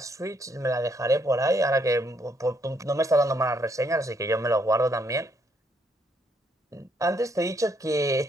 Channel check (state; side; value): normal; both; correlation 0.72